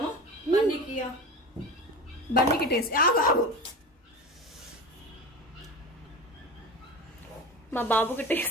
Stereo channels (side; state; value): both; normal; correlation 0.29